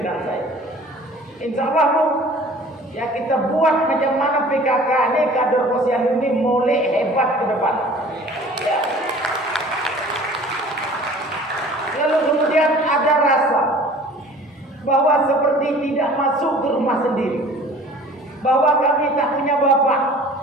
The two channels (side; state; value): both; normal; correlation 0.47